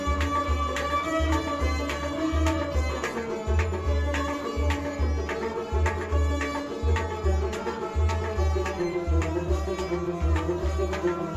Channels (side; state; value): both; identical; correlation 1.00